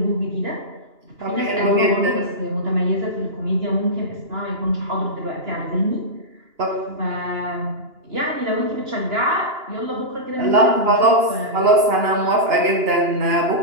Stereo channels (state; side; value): late; left; 2.9 ms